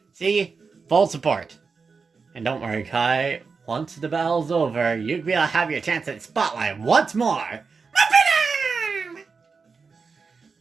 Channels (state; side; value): quieter; left; 5.0 dB